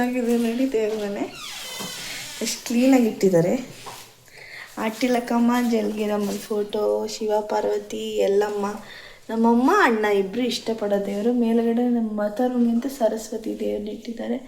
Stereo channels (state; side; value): identical; both; correlation 1.00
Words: ನೋಡಿ ದೇವ್ರ ಮನೆ, ಎಷ್ಟು ಕ್ಲೀನಾಗಿ ಇಟ್ಟಿದ್ದಾರೆ. ಆಟಿಲಕ್ಕಮ್ಮ, ಜಲ್ಗಿರಮ್ಮನ ಫೋಟೋ, ಶಿವ ಪಾರ್ವತಿ, ಎಲ್ಲಮ್ಮ, ನಮ್ಮಮ್ಮ ಅಣ್ಣ ಇಬ್ಬರು ಇಷ್ಟಪಡೋ ದೇವರು. ಮೇಲುಗಡೆ ನಮ್ಮ ಮಾತಾರುಣಿ ಅಂತ ಸರಸ್ವತಿ ದೇವ್ರನ್ನ ಇಟ್ಟಿದ್ದಾರೆ.